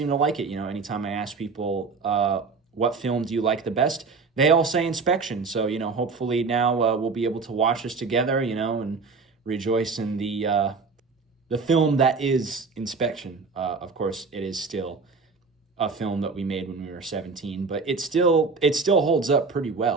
to like it. You know, anytime I ask people what film do you like the best, they all say Inspection. So hopefully now we'll be able to watch this together. And rejoice in the film that is Inspection. Of course, it is still a film that we made when we were 17, but it still holds up pretty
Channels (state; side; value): quieter; left; 4.5 dB